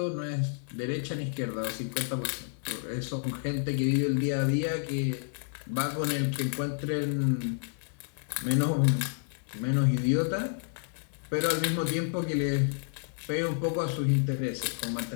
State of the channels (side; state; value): right; silent; digital silence